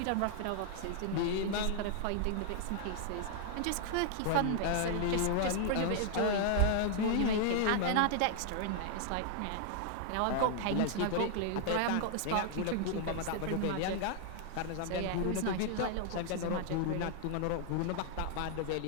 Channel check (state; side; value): different; both; correlation 0.00